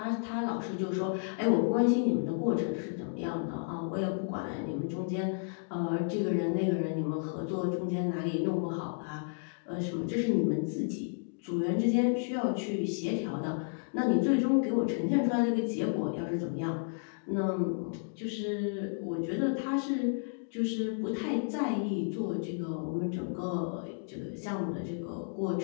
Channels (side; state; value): right; silent; digital silence